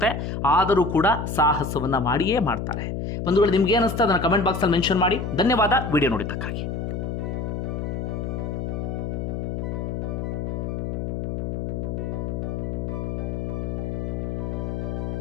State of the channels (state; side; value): noise; left; hum, 3 dB below the sound